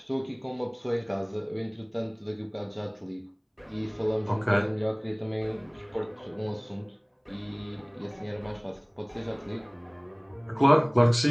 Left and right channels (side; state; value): both; identical; correlation 1.00